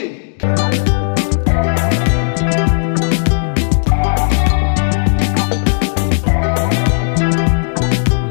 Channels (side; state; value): right; silent; digital silence